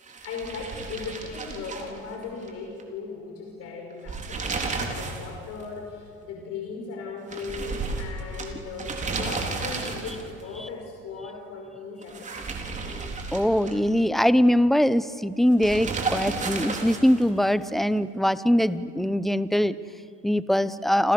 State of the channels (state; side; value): normal; both; correlation 0.87